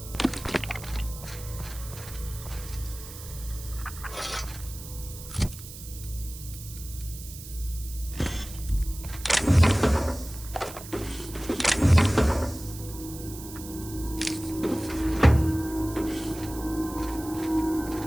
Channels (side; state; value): right; noise; hiss, 14 dB below the sound